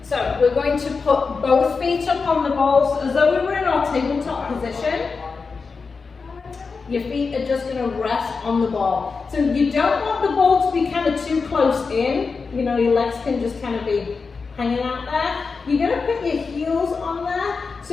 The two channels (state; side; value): quieter; right; 4.7 dB